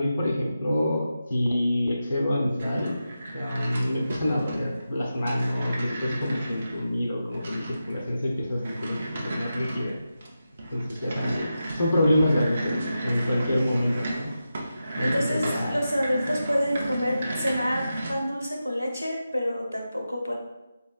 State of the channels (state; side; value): inverted; both; correlation -0.90